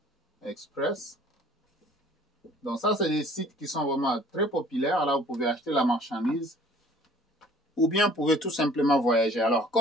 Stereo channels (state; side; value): normal; both; correlation 0.52